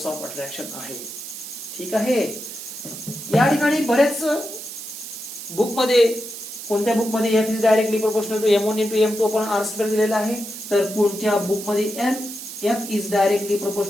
ऑफ अट्रॅक्शन आहे. ठीक आहे. या ठिकाणी बरेच बुक मध्ये, कोणत्या बुक मध्ये F is directly proportional to m1 into m2 upon r square दिलेला आहे, तर कोणत्या बुक मध्ये F is directly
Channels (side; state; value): right; noise; hiss, 10 dB below the sound